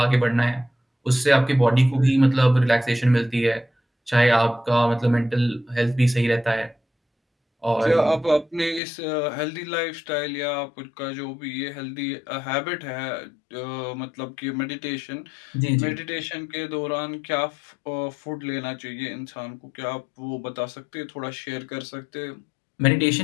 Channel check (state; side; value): drops out; right; at 8.8 s